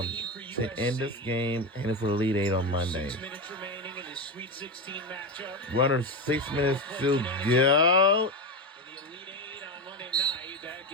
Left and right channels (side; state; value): both; normal; correlation 0.16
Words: end this game and for the Elite Eight on Monday. 6 minutes remaining in this Sweet 16 matchup. We're under 6 minutes to go. In the Elite Eight on Monday night, that